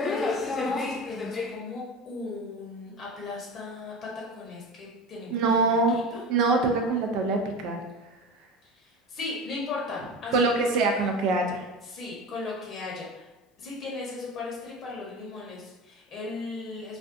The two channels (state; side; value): normal; both; correlation 0.29